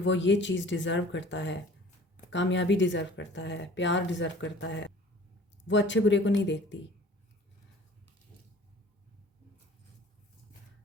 ये चीज़ डिज़र्व करता है, कामयाबी डिज़र्व करता है, प्यार डिज़र्व करता है। वो अच्छे बुरे को नहीं देखती,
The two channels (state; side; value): normal; both; correlation 0.48